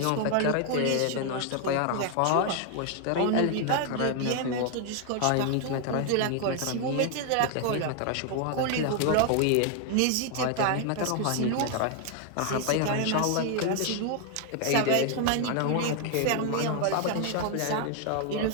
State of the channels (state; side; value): different; both; correlation 0.00